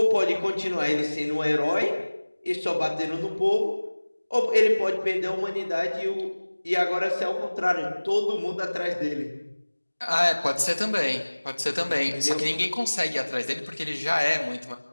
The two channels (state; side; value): inverted; both; correlation -1.00